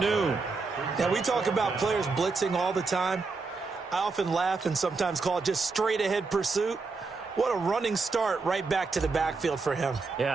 Now, we talk about players blitzing all the time. I often laugh and sometimes call it just straight-ahead pursuit. What a running start right back to the backfield for him.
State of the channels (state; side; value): quieter; left; 4.2 dB